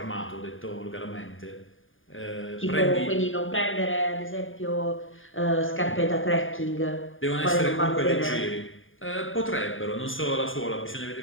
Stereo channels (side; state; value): right; late; 0.58 ms